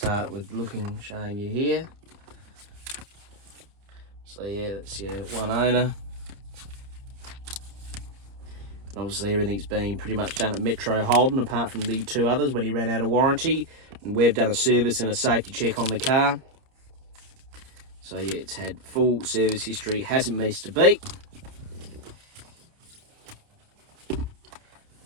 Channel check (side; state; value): left; late; 30 ms